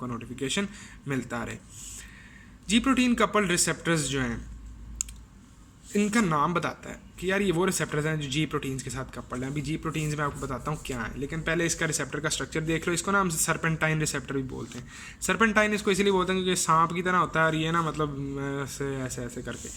नोटिफिकेशन मिलता रहे। जी प्रोटीन कपल्ड रिसेप्टर्स जो हैं इनका नाम बताता है कि यार ये वो रिसेप्टर्स हैं जो जी प्रोटीन्स के साथ कपल्ड हैं। अभी जी प्रोटीन्स में आपको बताता हूँ क्या है, लेकिन पहले इसका रिसेप्टर का स्ट्रक्चर देख लो। इसको ना हम सर्पेंटाइन रिसेप्टर भी बोलते हैं। सर्पेंटाइन इसको इसलिए बोलते हैं क्योंकि सांप की तरह होता है और ये ना मतलब ऐसे ऐसे ऐसे करके,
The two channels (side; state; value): both; identical; correlation 1.00